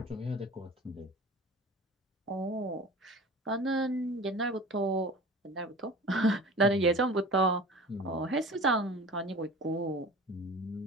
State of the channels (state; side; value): normal; both; correlation 0.40